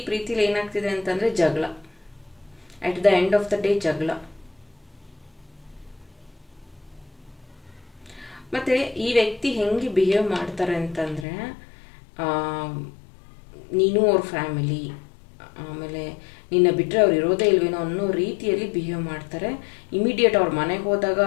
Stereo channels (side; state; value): right; drops out; at 11.2 s